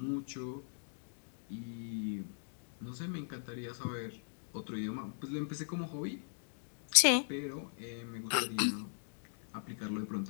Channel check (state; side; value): silent; right; digital silence